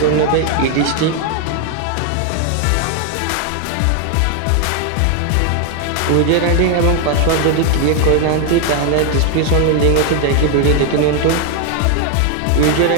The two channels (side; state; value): both; different; correlation 0.01